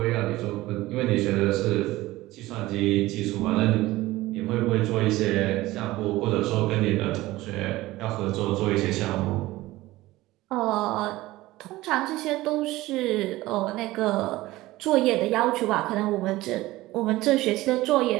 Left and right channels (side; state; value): left; quieter; 18.0 dB